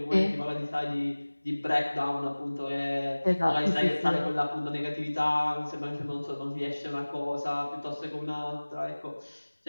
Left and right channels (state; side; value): inverted; both; correlation -1.00